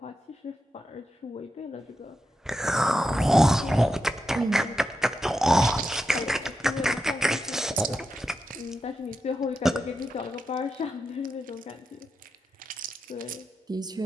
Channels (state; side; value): normal; both; correlation 0.87